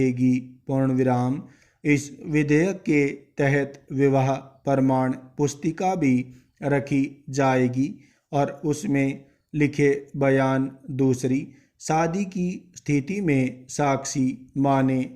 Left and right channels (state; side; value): identical; both; correlation 1.00